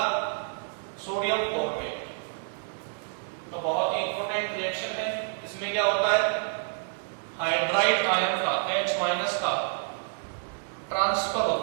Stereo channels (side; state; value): left; silent; digital silence